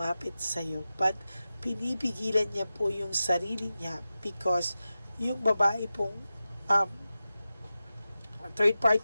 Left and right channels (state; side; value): inverted; both; correlation -0.94